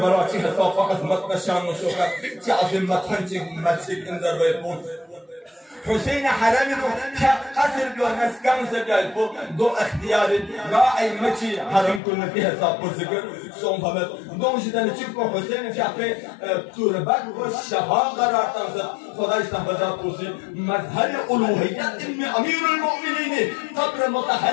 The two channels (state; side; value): drops out; right; at 12.0 s